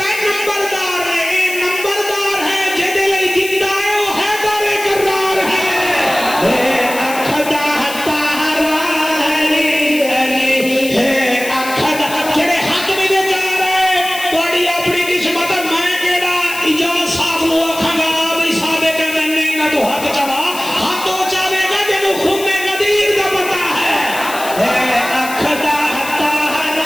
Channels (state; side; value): noise; left; hiss, 11 dB below the sound